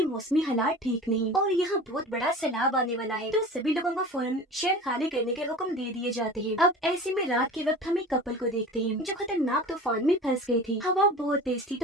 मौसमी हालात ठीक नहीं और यहाँ बहुत बड़ा सैलाब आने वाला है। तो सभी लोगों को फौरन शहर खाली करने के हुक्म दे दिए जाते हैं। अब ऐसे में रात के वक्त हम एक कपल को देखते हैं जो खतरनाक तूफान में फंस गए थे। हवा बहुत तेज थी,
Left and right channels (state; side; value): normal; both; correlation 0.37